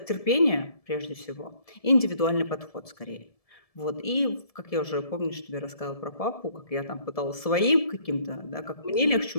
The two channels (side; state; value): right; late; 1.7 ms